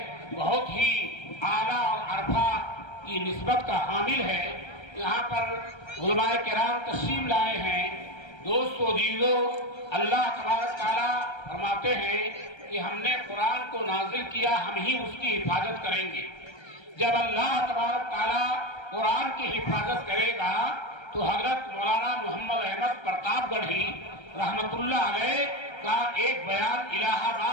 بہت ہی اعلیٰ اور عرفہ کی نسبت کا حامل ہے۔ یہاں پر علماء کرام تشریف لائے ہیں۔ دوست و عزیزو، اللہ تبارک تعالیٰ فرماتے ہیں کہ ہم نے قرآن کو نازل کیا، ہم ہی اس کی حفاظت کریں گے۔ جب اللہ تبارک تعالیٰ قرآن کی حفاظت کرے گا تو حضرت مولانا محمد احمد پرتاپ گڑھی رحمت اللہ علیہ کا ایک بیان الہ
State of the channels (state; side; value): late; right; 1.3 ms